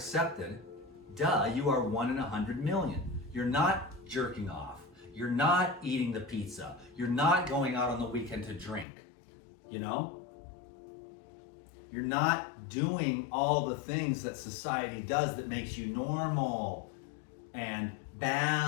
duh, you are 1 in 100 million. You're not jerking off. You're not eating the pizza. You're not going out on the weekend to drink. You know? You're not doing all the things that society does that makes you normal and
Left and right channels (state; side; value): drops out; right; at 8.8 s